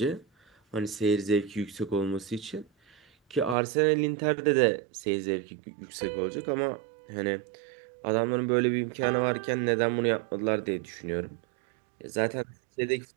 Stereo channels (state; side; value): drops out; left; at 3.6 s